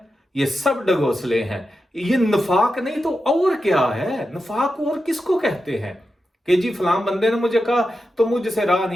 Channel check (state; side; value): normal; both; correlation 0.89